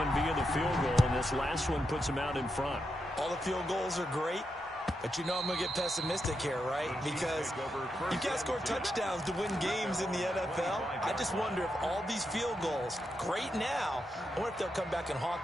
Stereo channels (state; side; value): normal; both; correlation 0.85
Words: via the field goal, and this last one puts him out in front. All the field goals are great. But you know I'm going to get pessimistic here, right? Because you can't score touchdowns to win games in the NFL. I just wonder if all these field goals, great now, I wonder if they'll come back and